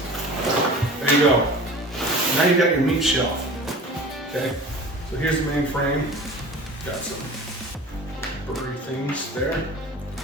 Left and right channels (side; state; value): both; normal; correlation 0.40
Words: There you go. Now you got your meat shelf. Okay, so here's the main frame. Got some blurry things there.